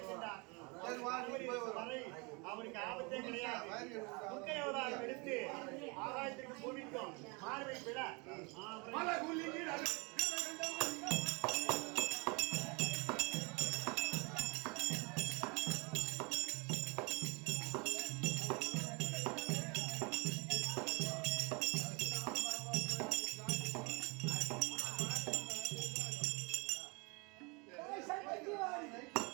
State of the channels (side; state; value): left; quieter; 29.8 dB